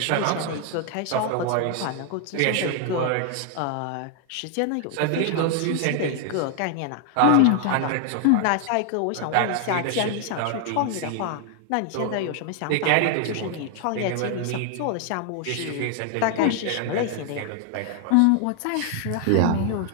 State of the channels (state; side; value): different; both; correlation 0.00